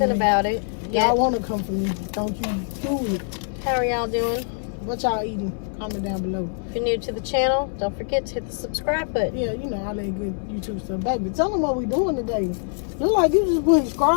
about it? Y'all want to come for me. Don't you do it. How are y'all doing? What y'all eating? Comment down below. If you're new to the channel, don't forget to hit the subscribe button. Yeah, you know, all that good YouTube stuff. Baby, tell them what we doing today. Look like you just putting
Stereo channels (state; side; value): silent; right; 62 dB below the other